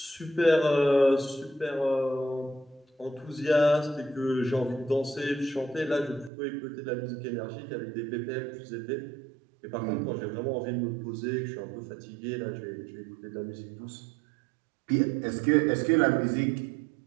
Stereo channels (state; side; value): drops out; left; at 6.3 s